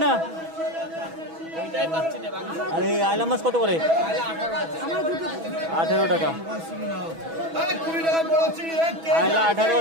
না? আরে আইলা মাছ কত করে? 18 টাকা আইলা,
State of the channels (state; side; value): late; left; 6.1 ms